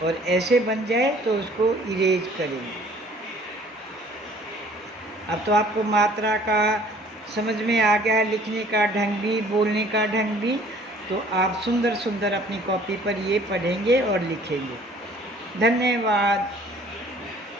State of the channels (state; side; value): normal; both; correlation 0.54